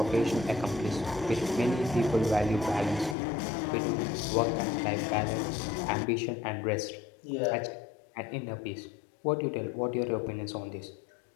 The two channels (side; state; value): right; drops out; at 3.2 s